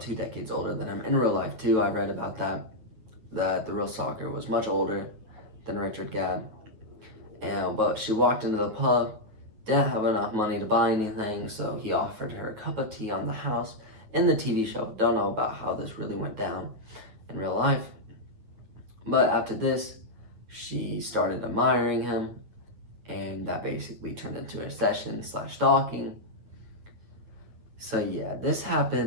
2 decades older than him. In real life too, I read about that the real stalker was much older than Richard Gadd. But she walked into the pub, didn't have enough money to buy anything, so he offered her a cup of tea on the house in the TV show. Don't know about how this really went down in real life. But after this, she started admiring him, and that basically turned into a session/stalking. So yeah, this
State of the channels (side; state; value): left; late; 9.6 ms